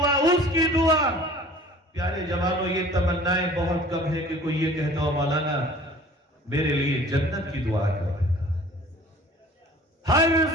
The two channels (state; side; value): normal; both; correlation 0.48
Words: اس کی دعا۔ دعا. پیارے جوانوں، یہ تمنائیں بہت کم ہے کہ کوئی یہ کہتا ہو مولانا میرے لیے جنت کی دعا کر دیتا. ہر